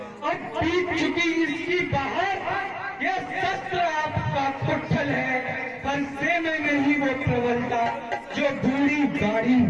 अब बीत चुकी इसकी बाहर, यह शस्त्र आपका कुट्ठल है। फरसे में नहीं वो प्रबलता जो बूढ़ी गाड़ी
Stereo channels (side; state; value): both; identical; correlation 1.00